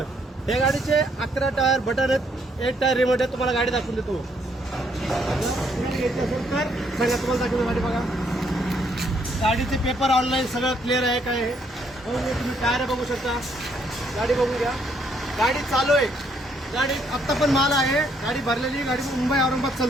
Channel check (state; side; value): normal; both; correlation 0.70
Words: या गाडीचे 11 टायर बटन आहेत, 1 टायर रिमोट आहे. तुम्हाला गाडी दाखवून देतो. घ्यायची असेल तर सांगा, तुम्हाला दाखवतो गाडी. बघा, गाडीचे पेपर ऑनलाईन सगळं क्लिअर आहे. काय आहे तुम्ही टायर बघू शकता. गाडी बघून घ्या. गाडी चालू आहे. गाडी आत्ता पण माल आहे. गाडी भरलेली. गाडी मुंबई औरंगाबाद